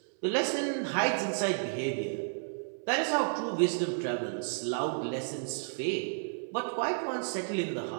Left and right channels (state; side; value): silent; left; 56 dB below the other